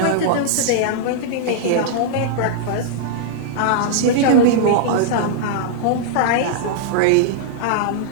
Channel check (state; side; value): different; both; correlation -0.02